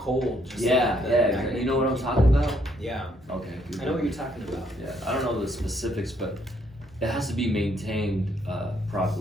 cold. Just Yeah, like the yeah. magnet You know what I'm can talking about? keep- Yeah, Okay. I know what you're talking about. Yeah, I don't know the specifics, but it has to be maintained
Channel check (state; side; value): normal; both; correlation 0.70